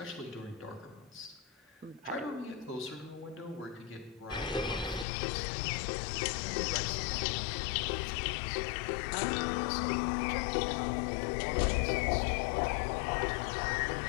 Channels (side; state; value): right; drops out; at 5.1 s